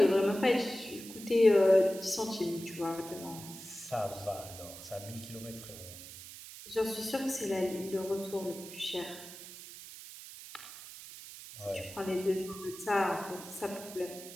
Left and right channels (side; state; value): right; noise; hiss, 14 dB below the sound